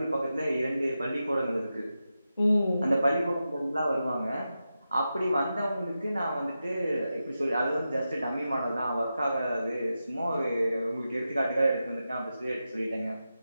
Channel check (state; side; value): inverted; both; correlation -0.90